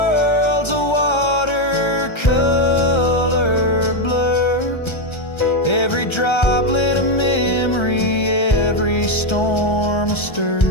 a watercolor blur. Every droplet a memory, every storm a stir.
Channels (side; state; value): right; late; 1.3 ms